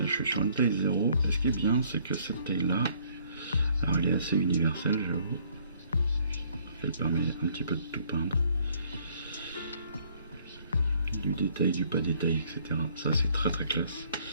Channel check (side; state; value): both; inverted; correlation -0.63